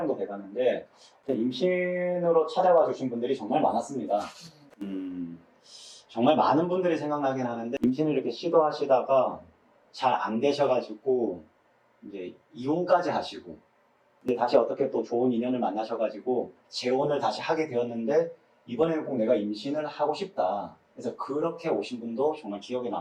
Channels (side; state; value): both; identical; correlation 1.00